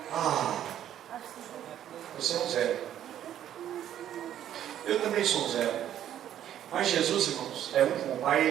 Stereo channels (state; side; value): quieter; left; 11.0 dB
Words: Você é um zero. Eu também sou um zero. Mas Jesus, irmãos, é um com o Pai,